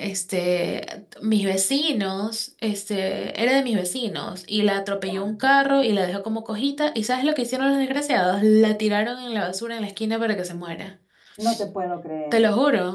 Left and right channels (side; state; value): both; identical; correlation 1.00